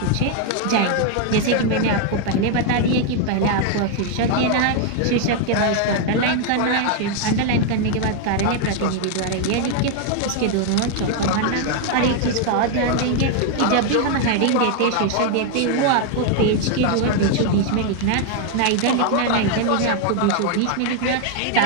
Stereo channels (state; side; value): different; both; correlation 0.00